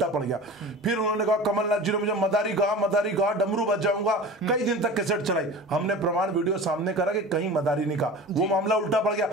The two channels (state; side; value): normal; both; correlation 0.36